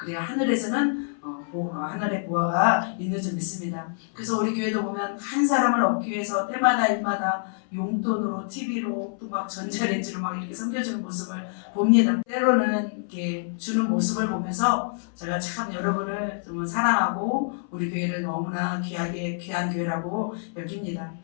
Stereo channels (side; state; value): right; silent; 61 dB below the other